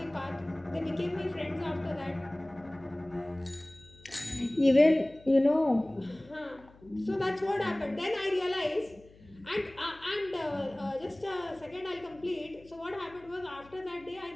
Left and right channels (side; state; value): left; noise; hum, 24 dB below the sound